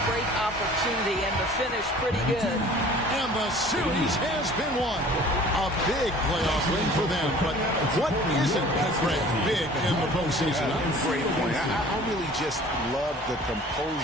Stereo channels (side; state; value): both; normal; correlation 0.48